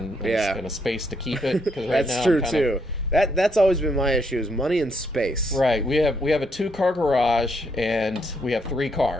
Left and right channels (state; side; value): normal; both; correlation 0.74